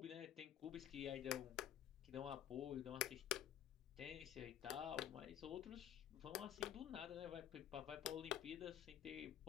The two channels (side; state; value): right; quieter; 10.6 dB